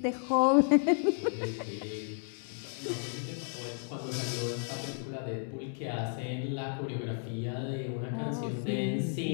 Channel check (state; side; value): silent; right; 56 dB below the other